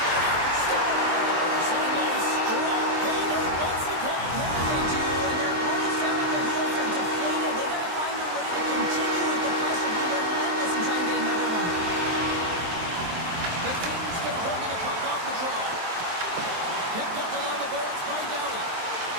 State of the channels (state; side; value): late; left; 23 ms